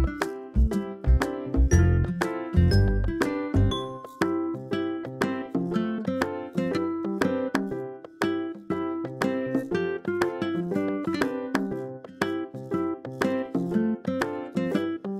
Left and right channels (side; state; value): both; identical; correlation 1.00